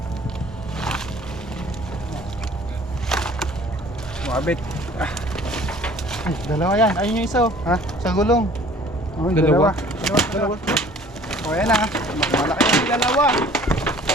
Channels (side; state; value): both; normal; correlation 0.51